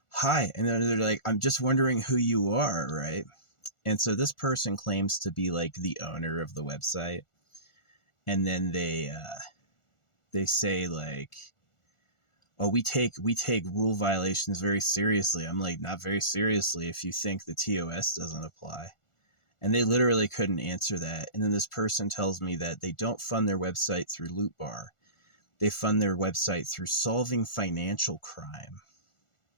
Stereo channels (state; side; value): late; right; 1.4 ms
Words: "Hi," and then they're like, "I'm just wondering who you are, right?" And so this person claims to be like the owner of the website, and then they say like, "Oh, we take rule violations very seriously." I'm like, "Not very seriously if you think the TOS doesn't apply." And they literally couldn't answer that. And then this person tells me that they don't fund their website through Loot Bar. They fund their website through solving financial crime.